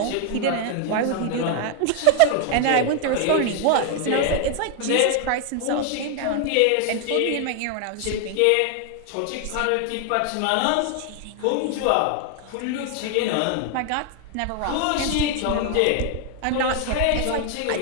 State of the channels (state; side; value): different; both; correlation 0.00